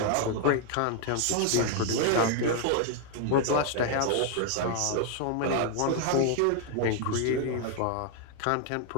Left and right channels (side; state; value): both; different; correlation 0.00